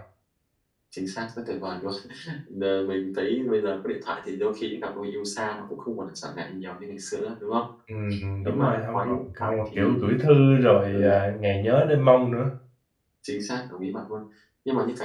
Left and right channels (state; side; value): identical; both; correlation 1.00